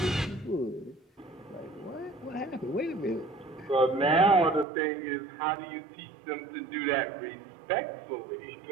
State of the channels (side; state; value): left; drops out; at 4.7 s